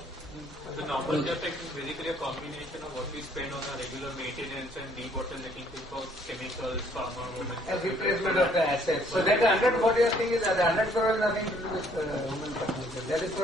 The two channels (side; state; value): both; normal; correlation 0.63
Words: The normal capex is basically a combination of what we spend on our regular maintenance and debottlenecking for chemicals, pharma, A replacement of the assets. So that 140 thing is that the 100 crore has nothing to do with human capital.